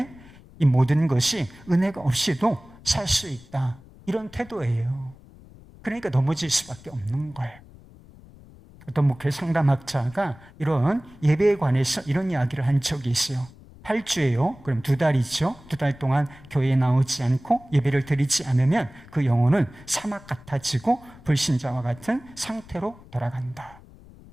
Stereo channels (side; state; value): left; noise; rumble, 22 dB below the sound